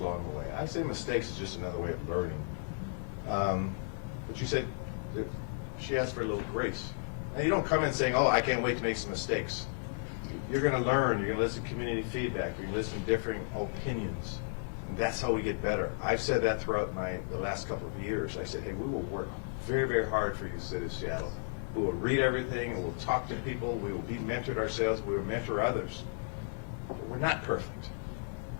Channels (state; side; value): silent; right; 55 dB below the other